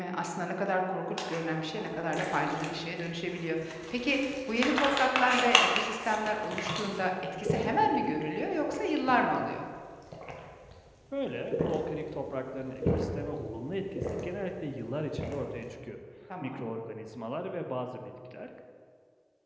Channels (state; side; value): identical; both; correlation 1.00